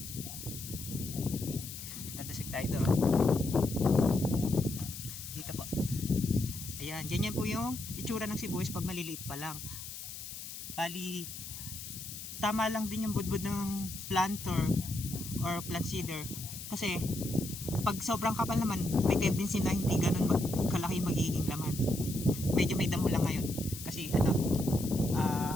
Dadasig tayo doon. Dito po. Ayan. Ganyan po yung itsura ng sibuyas pag maliliit pa lang. Bali, tama lang din yung budbud ng planter or plant seeder. Kasi, pag sobrang kapal naman, may tendency na hindi ganun kalaki magiging laman. Medyo may damo lang ngayon. Kasi,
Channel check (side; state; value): left; noise; hiss, 10 dB below the sound